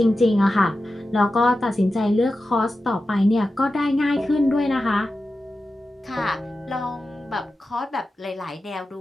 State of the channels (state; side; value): normal; both; correlation 0.92